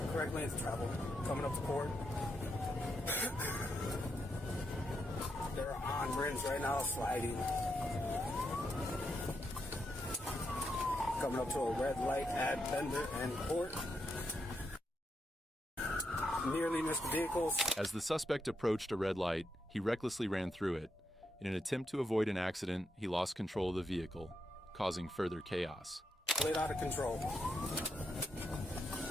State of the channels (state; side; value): normal; both; correlation 0.82